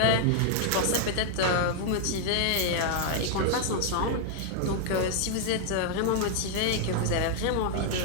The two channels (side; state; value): both; different; correlation 0.00